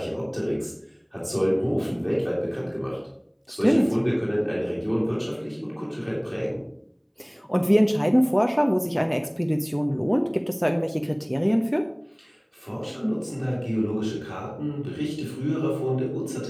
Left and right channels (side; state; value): both; identical; correlation 1.00